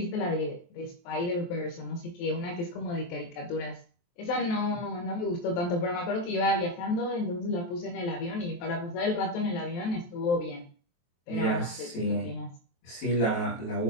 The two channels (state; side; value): late; right; 23 ms